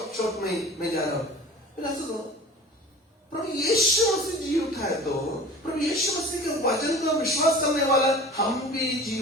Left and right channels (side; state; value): both; normal; correlation 0.40